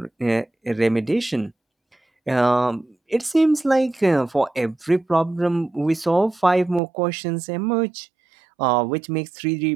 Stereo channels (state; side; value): drops out; left; at 6.8 s